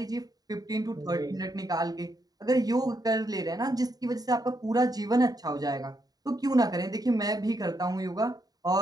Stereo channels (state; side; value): late; left; 0.18 ms